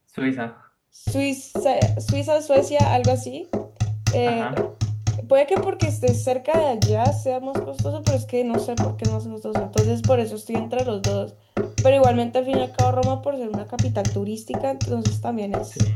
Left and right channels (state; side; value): identical; both; correlation 1.00